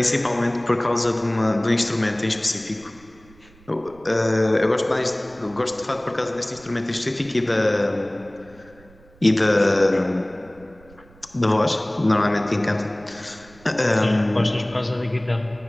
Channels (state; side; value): noise; right; rumble, 26 dB below the sound